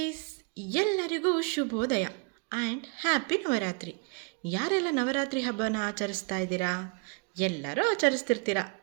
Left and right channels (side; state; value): left; quieter; 33.4 dB